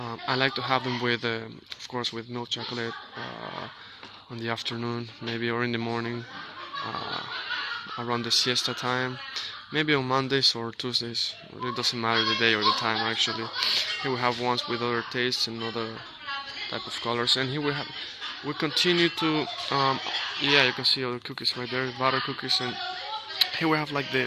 like to have them with, of course, with milk chocolate on the afternoon, maybe, or in the morning. around the siesta time, maybe on Mondays or Tuesdays. It doesn't matter the day or the time actually. Here we have ones with other tastes and other type of colors, and here we continue to yeah, you can see all the cookies right there, butter cookies, and here we have like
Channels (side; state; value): both; identical; correlation 1.00